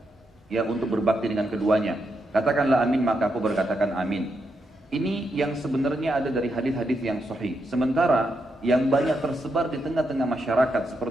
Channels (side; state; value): both; normal; correlation 0.82